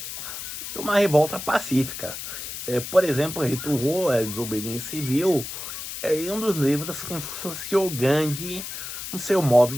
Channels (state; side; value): noise; left; hiss, 8 dB below the sound